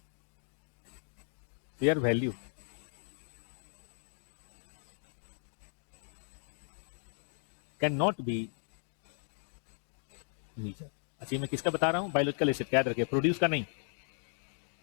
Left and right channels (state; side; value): silent; right; digital silence